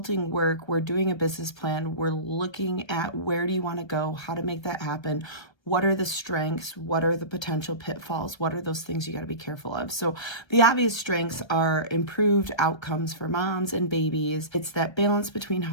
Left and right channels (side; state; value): right; late; 1.3 ms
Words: work, we're doing a business plan, we're looking at where do you want to go, how to make that happen. What are the strengths? What are the potential pitfalls? What are those things you got to be careful of? So the obvious strengths are improved outcomes for moms and babies. It's that balance between